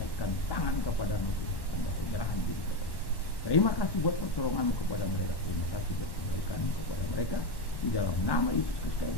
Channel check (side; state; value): right; late; 1.1 ms